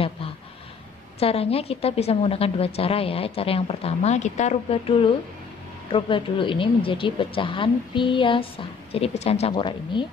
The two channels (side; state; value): right; quieter; 5.6 dB